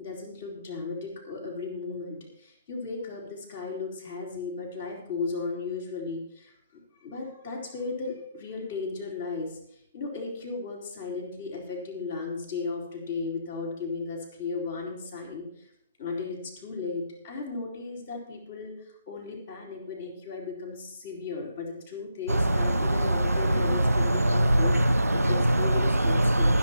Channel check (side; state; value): both; inverted; correlation -0.79